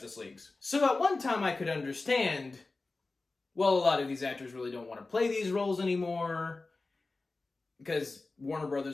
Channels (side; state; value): right; quieter; 3.5 dB